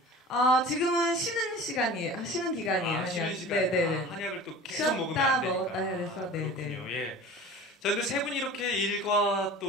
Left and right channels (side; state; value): both; normal; correlation 0.39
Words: 지금은 쉬는 시간이에요. 쉬는 기간이에요. 쉬는 시간. 네네. 한약을 또 계속 먹으면 안 되니까. 먹었다 해서 그렇군요. 예. 자, 근데 세 분이 이렇게 일과